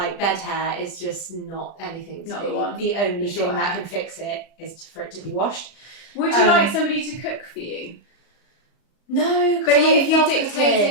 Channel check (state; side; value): late; right; 34 ms